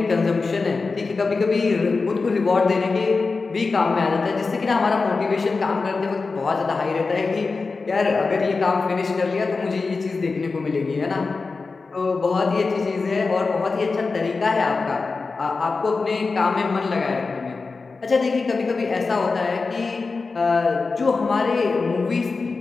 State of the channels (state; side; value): quieter; right; 4.2 dB